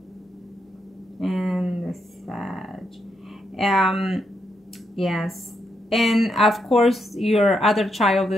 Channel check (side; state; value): both; normal; correlation 0.80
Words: And the Sag. Yes. And of course, your other child,